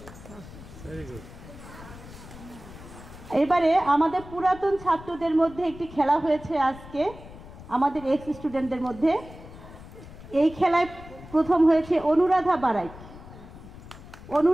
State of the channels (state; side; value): noise; left; rumble, 17 dB below the sound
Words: এবারে আমাদের পুরাতন ছাত্রদের মধ্যে একটি খেলা হয়েছে আজকে আমাদের এক্স স্টুডেন্টদের মধ্যে। এই খেলায় প্রথম হয়েছে অনুরাধা বারাই।